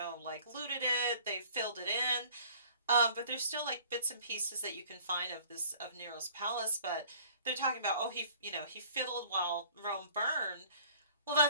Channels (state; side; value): inverted; both; correlation -0.52